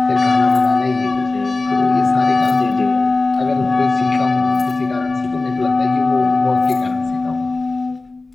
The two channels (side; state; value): right; quieter; 3.4 dB